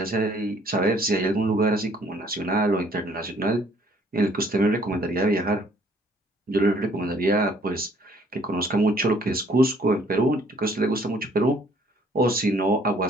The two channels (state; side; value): normal; both; correlation 0.60